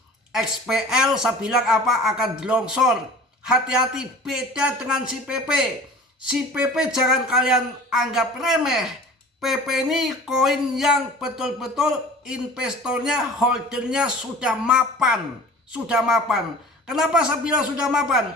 XPL saya bilang apa akan longsor. Hati-hati, beda dengan si PP. Si PP jangan kalian anggap remeh. PP ini koin yang betul-betul investornya, holdernya sudah mapan. Kenapa saya bilang sudah mapan?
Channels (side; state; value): both; normal; correlation 0.42